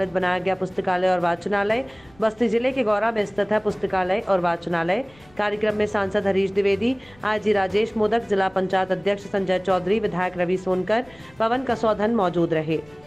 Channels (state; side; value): noise; left; rumble, 28 dB below the sound